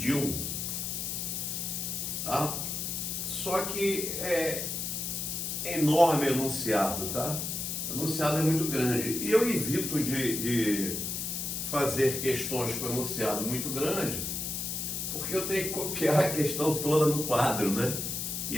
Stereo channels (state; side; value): noise; left; hiss, 3 dB below the sound